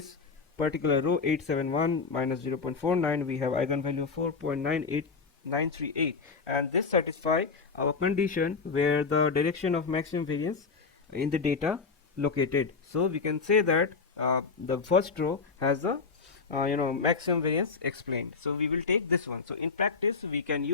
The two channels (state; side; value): quieter; right; 4.8 dB